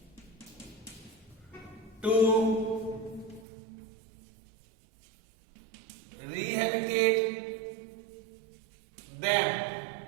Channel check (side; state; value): left; drops out; at 3.5 s